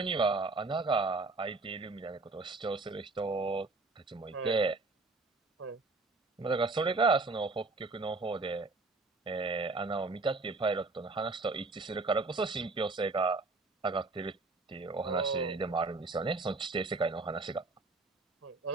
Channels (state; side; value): quieter; left; 3.6 dB